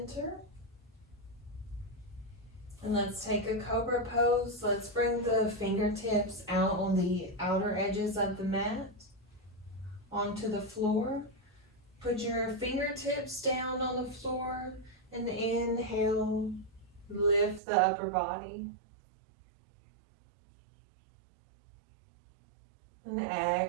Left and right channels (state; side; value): drops out; left; at 17.6 s